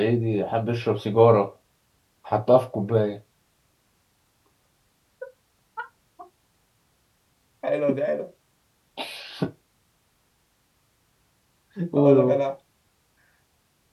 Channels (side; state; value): both; identical; correlation 1.00